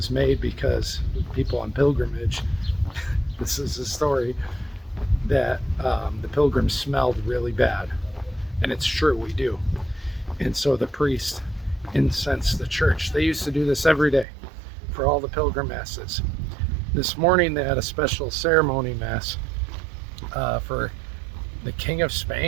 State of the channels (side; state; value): left; drops out; at 14.2 s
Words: made because people on pilgrimage, this is a story, that the pilgrims smelled really bad. And it's true, we do. And so the priest incensed the church. They used to do this every day for all the pilgrim masses. This morning they had a special ceremony mass for the King of